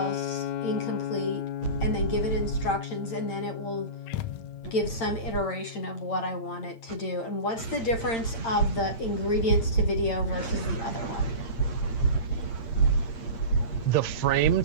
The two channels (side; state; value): right; late; 8.8 ms